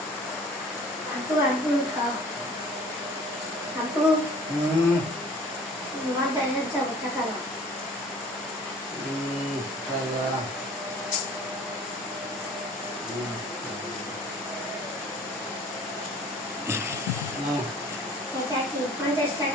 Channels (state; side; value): normal; both; correlation 0.49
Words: আপু আপু খাও আপু বাজারে যাবো টাকা দাও। এটা কি 50